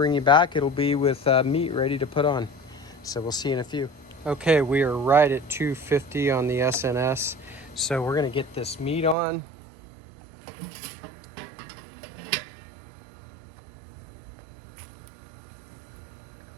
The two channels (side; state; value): left; drops out; at 9.2 s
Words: you back, it'll be with meat ready to put on. So we'll see you in a few. Okay, we are right at 250 on the SnS. So we're gonna get this meat on.